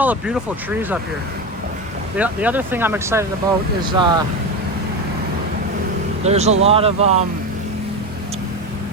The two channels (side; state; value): both; normal; correlation 0.19